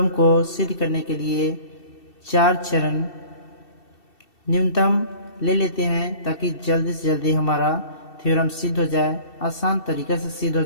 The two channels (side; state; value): right; late; 2.7 ms